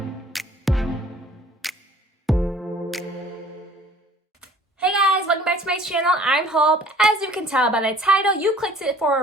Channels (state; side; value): normal; both; correlation 0.52